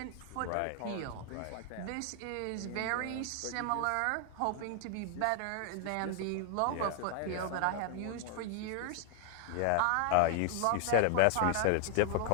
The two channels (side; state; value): both; different; correlation 0.00